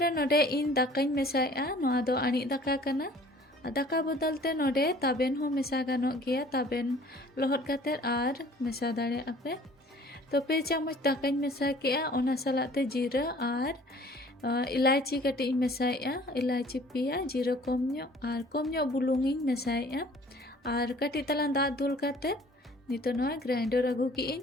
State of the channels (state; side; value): normal; both; correlation 0.51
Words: नोडे इन दाकाई मेसाया नोआ दो आनी दाका कना दाका बदलते नोडे ताबेन हो मेसा गानो गया ताबेन लोहट काते आर मेसा दाड़े आपे तो 2 चामच दाकाई मेसा किया ओना सलाते जीरा आर इलायची कटी मेसाया इलायची पिया जीरा कम बुलुंगी मेसाया आर कटी तलान दा दुल काते नितो नोआ ग्राइंडर अगु की